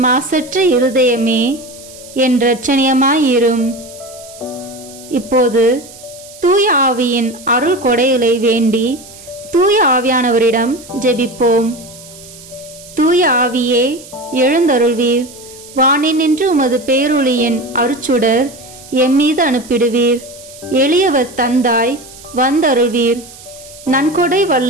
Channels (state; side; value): noise; right; hiss, 19 dB below the sound